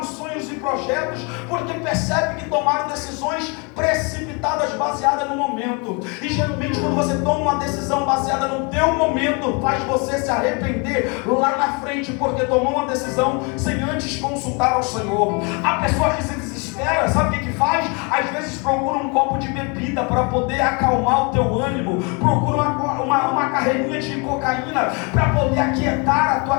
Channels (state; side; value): quieter; right; 32.2 dB